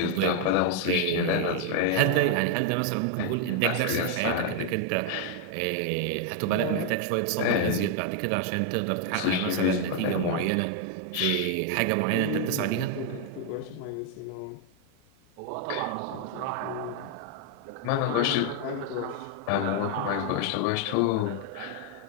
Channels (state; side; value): different; both; correlation 0.00